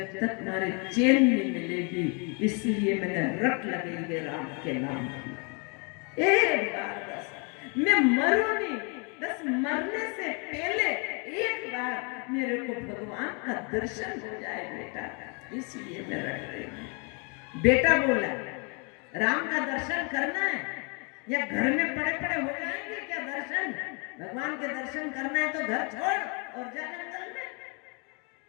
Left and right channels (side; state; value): right; quieter; 34.6 dB